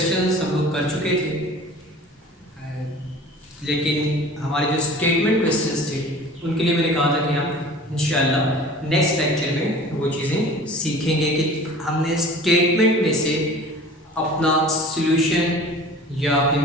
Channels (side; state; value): both; normal; correlation 0.43